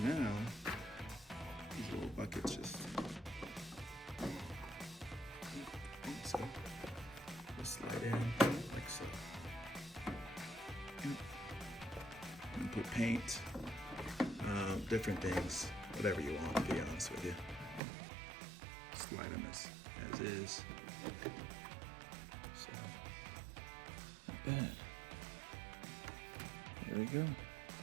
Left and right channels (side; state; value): left; drops out; at 17.8 s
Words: Now, these little buckets just slide in like so. And put paint, different things, whatever you want, to be honest with you. Slide them as is. So, not bad. There we go.